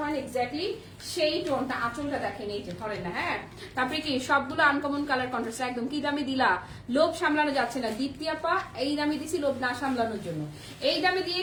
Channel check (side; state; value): both; identical; correlation 1.00